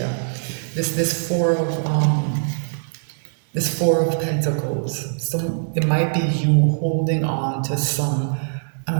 this four of Pentacles. So it might be you holding on to some, I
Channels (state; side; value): silent; left; digital silence